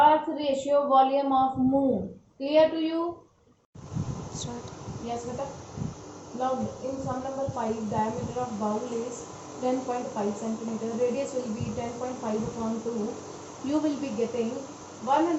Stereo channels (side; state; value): both; identical; correlation 1.00